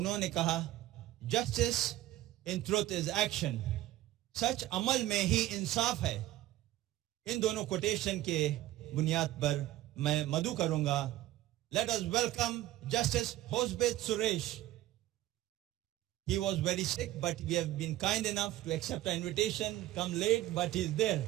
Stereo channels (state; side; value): quieter; left; 14.9 dB